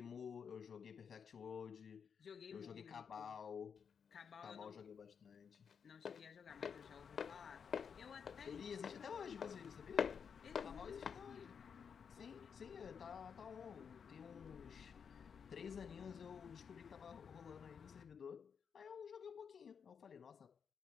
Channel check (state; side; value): quieter; right; 6.8 dB